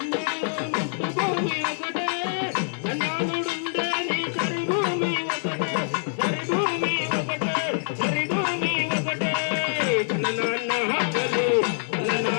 మట్టు భూమి ఒకటే చందాలుడుండే నీ సరి భూమి ఒకటే సరి భూమి ఒకటే సరి భూమి ఒకటే నాన్న హక్కులు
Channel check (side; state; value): right; silent; digital silence